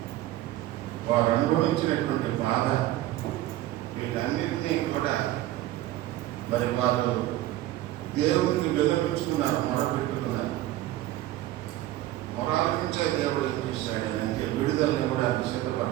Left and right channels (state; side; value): quieter; left; 15.2 dB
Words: వారు అనుభవించినటువంటి బాధ, వీటన్నిటినీ కూడా మరి వారు దేవునికి విన్నవించుకున్నారు, మొరపెట్టుకున్నారు. మొరాలకించే దేవుడు ఏం చేశాడు అంటే విడుదలని కూడా